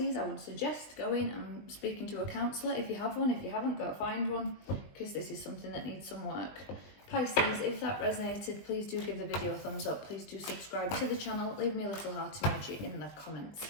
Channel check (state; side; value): late; right; 20 ms